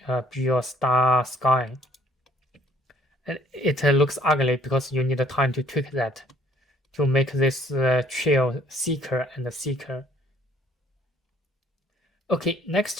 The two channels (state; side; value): normal; both; correlation 0.60